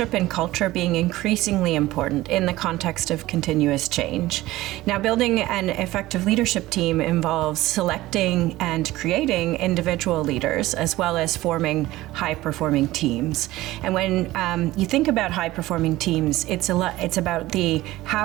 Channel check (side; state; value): left; quieter; 17.3 dB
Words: and culture being increasingly important in the context of continuous change. Now, building an effective leadership team involves selecting and creating individual leaders, as well as forming high-performing teams. And when you think about high-performing teams, it's about